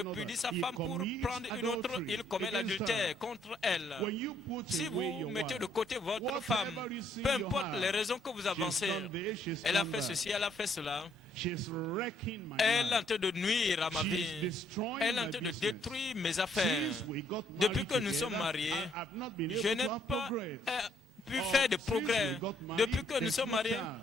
sa femme pour prendre une autre, il commet l'adultère contre elle. Si vous mettez de côté votre femme, peu importe les raisons que vous avancez, elle a fait ceci, elle a fait cela, elle est en train de nuire à ma vie, elle est en train de détruire mes affaires. Depuis que nous sommes mariés, je n'ai pas pu faire de progrès. Depuis que nous sommes mariés,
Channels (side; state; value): both; normal; correlation 0.68